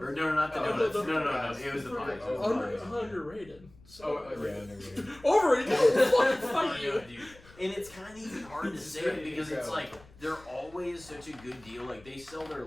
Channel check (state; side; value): noise; left; rumble, 24 dB below the sound